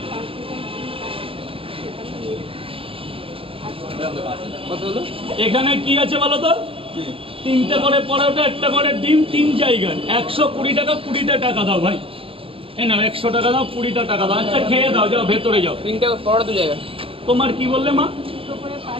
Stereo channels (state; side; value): late; left; 0.27 ms